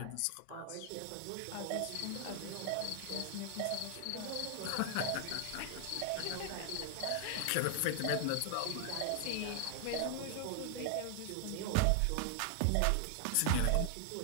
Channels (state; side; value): different; both; correlation 0.00